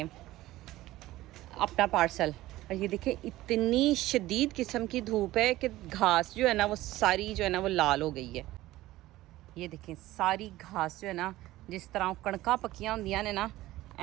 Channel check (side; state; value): left; quieter; 16.6 dB